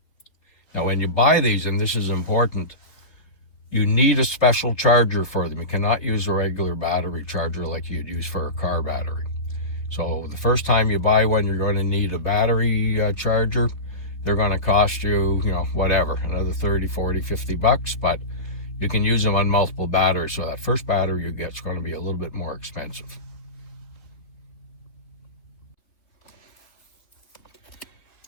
Now, when you buy these, and this is important, you need a special charger for them. You cannot use a regular battery charger like you'd use for a car battery. So the first time you buy one, you're going to need a battery charger. They're going to cost you, whatever, another 30, 40, 50 bucks, but you can use them on multiple batteries. So that first battery you get is going to be a little bit more expensive.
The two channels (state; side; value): late; right; 3.3 ms